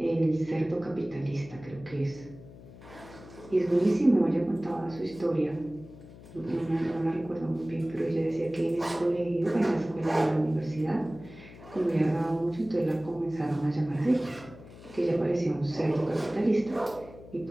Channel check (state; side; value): noise; left; hum, 18 dB below the sound